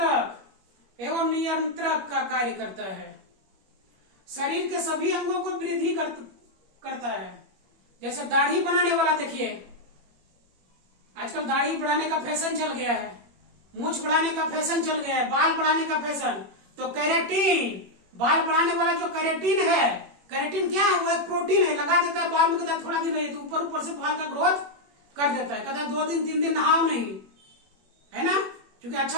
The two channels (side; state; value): left; late; 21 ms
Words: एवं नियंत्रक का कार्य करता है। शरीर के सभी अंगों को वृद्धि करता है। जैसे दाढ़ी बनाने वाला, देखिए आजकल दाढ़ी बढ़ाने का फैशन चल गया है, मूछ बढ़ाने का फैशन चल गया है, बाल बढ़ाने का फैशन। तो कैरेटीन, बाल बढ़ाने वाला जो कैरेटीन है, कैरेटीन क्या है? वो एक प्रोटीन है, लगा देता है बाल में, कहता है थोड़ा दिन रहिए तो ऊपर ऊपर से बाल का ग्रोथ कर देता है। कहता है 2 दिन 3 दिन नहाओ नहीं, है ना, क्योंकि